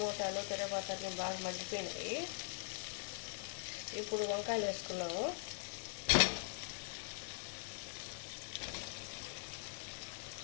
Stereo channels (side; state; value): right; silent; digital silence